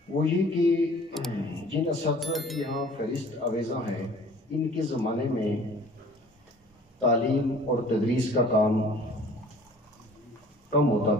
وہ یہ کہ جن اساتذہ کی یہاں فہرست آویزاں ہیں، ان کے زمانے میں تعلیم اور تدریس کا کام کم ہوتا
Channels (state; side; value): normal; both; correlation 0.50